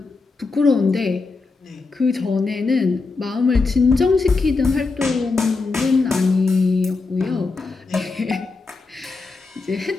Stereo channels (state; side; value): quieter; right; 4.0 dB